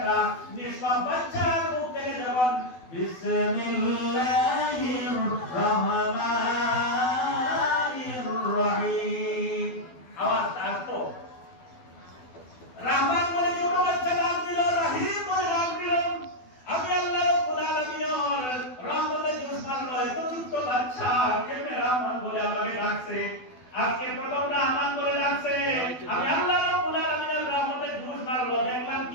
নিষ্পাপ বাচ্চার মুখ থেকে যখন বিসমিল্লাহির রহমানির রহিম আওয়াজ আসতো, রহমান বলে ছোট বাচ্চা ডাক দিল, রহিম বলে ডাক দিল, আমি আল্লাহ রাব্বুল আলামিনের রহমতের জোশমান রয় তো ছোট বাচ্চা কেমনে রহমান বলে আমাকে ডাকছে, আজকে প্রথম রহমান বলে ডাকছে। আমি আল্লাহ রাব্বুল আলামিনের রহমতের জোশমান রয় দেখলাম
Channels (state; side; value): late; right; 12 ms